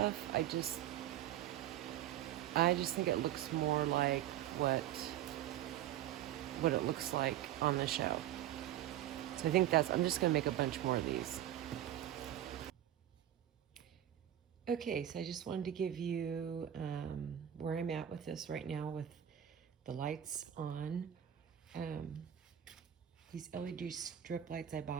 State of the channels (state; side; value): quieter; left; 11.6 dB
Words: I just think it looks more like what it looks like on the show. So I think I'm just gonna make a bunch more of these. Okay, so I just wanted to give you where I'm at with this right now with the lights on. These LED strip lights I